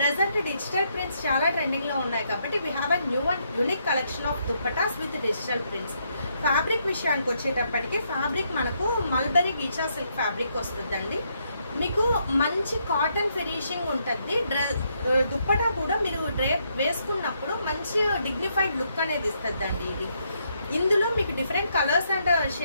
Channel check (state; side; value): inverted; both; correlation -0.76